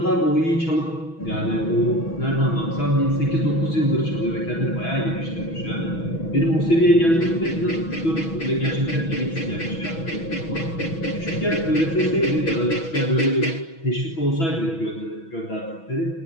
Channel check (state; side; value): late; right; 6.1 ms